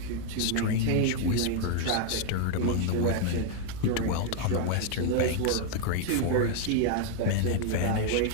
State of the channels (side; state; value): both; different; correlation 0.00